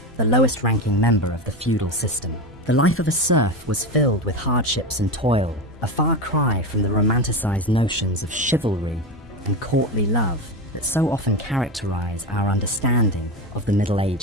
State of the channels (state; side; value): normal; both; correlation 0.20